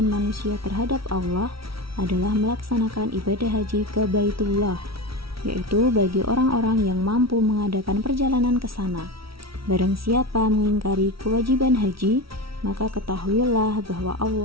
manusia terhadap Allah adalah melaksanakan ibadah haji ke Baitullah, yaitu bagi orang-orang yang mampu mengadakan perjalanan ke sana. Barang siapa mengingkari kewajiban haji, maka ketahuilah bahwa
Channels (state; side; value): late; left; 0.75 ms